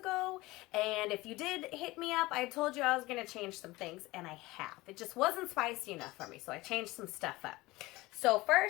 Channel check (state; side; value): quieter; right; 20.2 dB